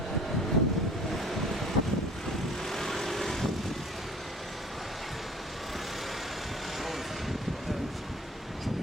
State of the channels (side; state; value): both; normal; correlation 0.49